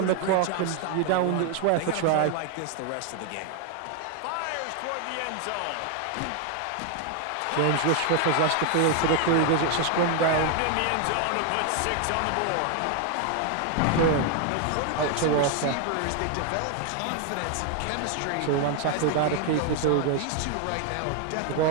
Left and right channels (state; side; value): different; both; correlation 0.01